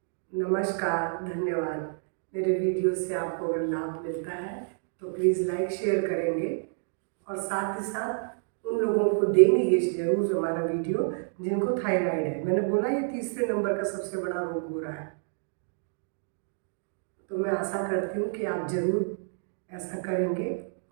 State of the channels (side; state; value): left; silent; digital silence